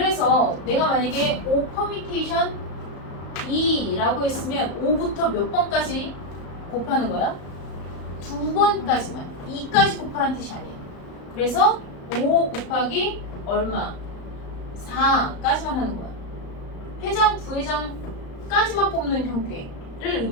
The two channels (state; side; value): late; right; 35 ms